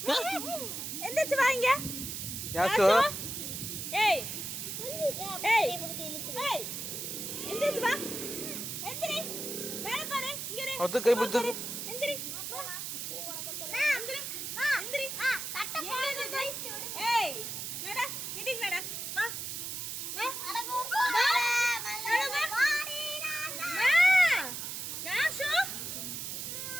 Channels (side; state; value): right; noise; hiss, 5 dB below the sound